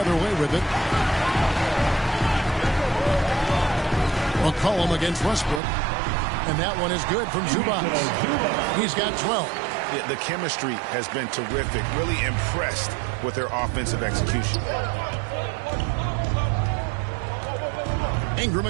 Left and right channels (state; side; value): drops out; left; at 5.6 s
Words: way with it. McCollum against Westbrook. And that one is good from Zubac. He's got 12. Yeah, the chemistry has been terrific. Really impressed with their offensive execution. Ingram